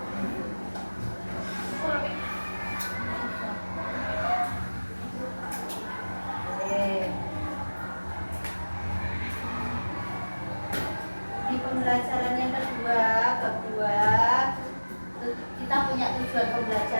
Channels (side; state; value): both; inverted; correlation -1.00